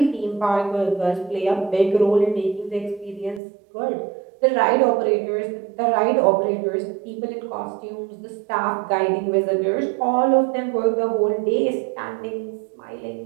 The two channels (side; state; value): left; drops out; at 3.4 s